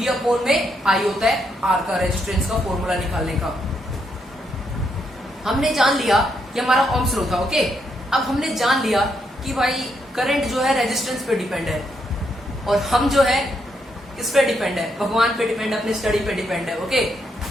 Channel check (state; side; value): normal; both; correlation 0.78